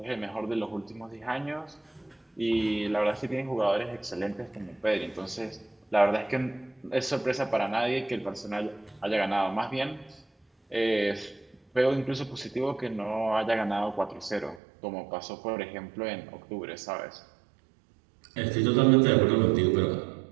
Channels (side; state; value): left; drops out; at 14.6 s